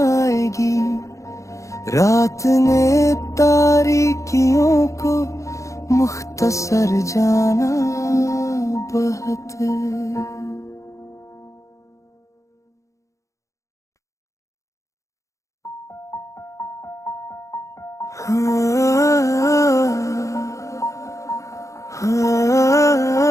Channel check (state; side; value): late; right; 0.15 ms